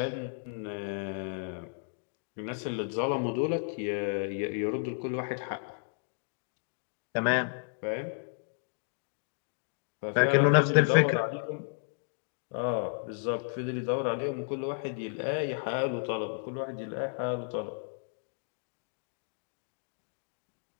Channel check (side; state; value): right; silent; digital silence